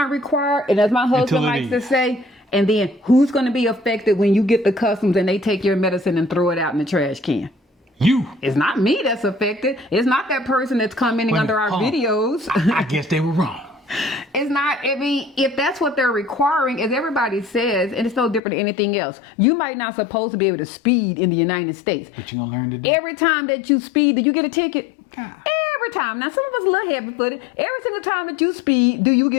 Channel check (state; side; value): drops out; right; at 18.4 s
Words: required. And as my husband likes to say, and then who's going to be affected when you get the customs and they take your medicine and throw it out in the trash can? You. It's not me that's affected. It's not that person that's commenting under our videos. I guess they were wrong. It's not, I mean, if that's what they're requiring, as everybody says, and it's no different than anything else, you might not supposed to be able to speed in the United States. But you're going to learn today. Every time that you speed, do you get a ticket? God. Every time. Now, some of us a little heavy-footed. Every single time that you speed, do you